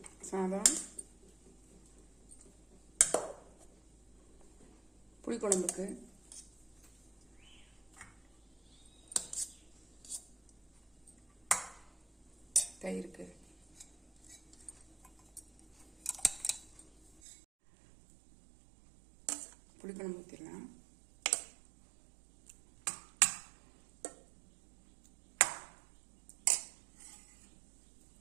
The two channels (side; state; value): left; drops out; at 17.1 s